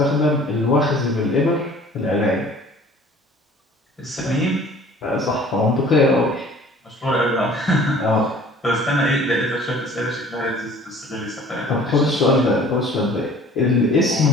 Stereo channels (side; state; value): both; normal; correlation 0.50